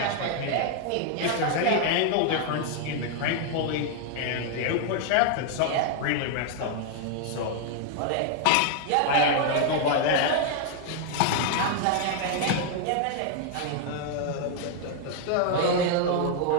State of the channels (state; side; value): different; both; correlation 0.00